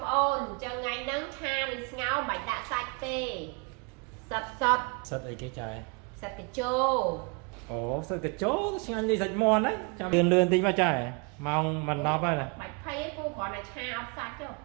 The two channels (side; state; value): left; quieter; 32.8 dB